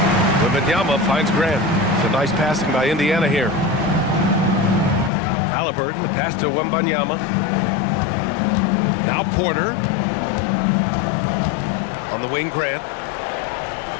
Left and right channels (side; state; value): right; drops out; at 5.1 s